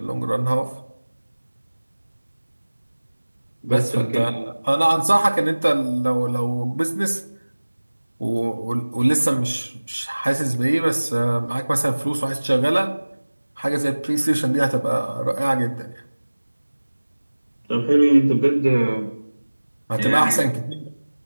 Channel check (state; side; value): inverted; both; correlation -1.00